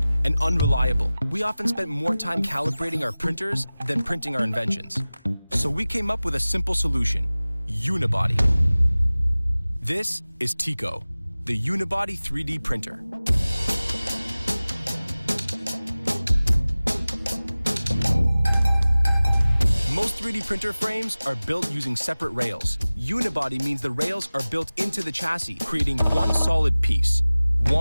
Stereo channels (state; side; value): inverted; both; correlation -0.98